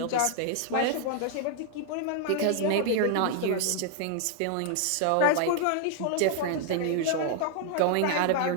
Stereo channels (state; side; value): different; both; correlation 0.00